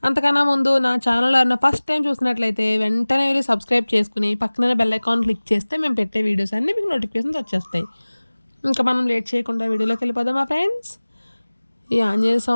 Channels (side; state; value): both; inverted; correlation -1.00